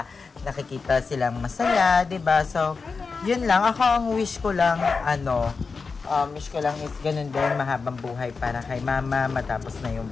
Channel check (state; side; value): quieter; right; 4.7 dB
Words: nakikita silang masaya, diba? So, yun lang. Ako ang wish ko lang, wish ko lang is ganun din, mahabang buhay para kay mama, matapos na yung